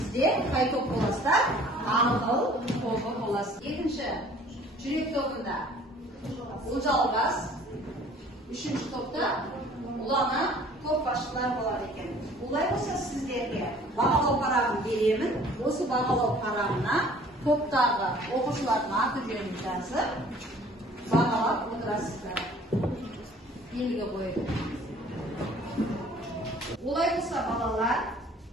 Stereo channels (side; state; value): both; normal; correlation 0.53